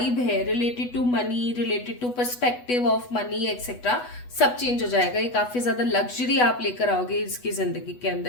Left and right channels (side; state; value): right; late; 8.1 ms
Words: है related to money, related to perspective of money etcetera, सब चेंज हो जाएगा। ये काफी ज्यादा लग्जरी आप लेकर आओगे इसकी जिंदगी के